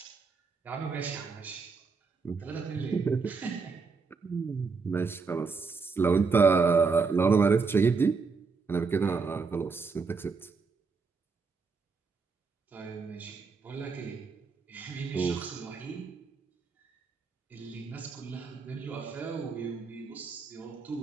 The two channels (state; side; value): quieter; left; 4.8 dB